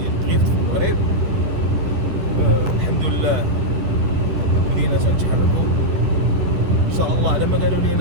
دريفت في المغرب. الحمد لله بدينا تنتحركوا ان شاء الله. على ما قالوا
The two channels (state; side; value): late; left; 10 ms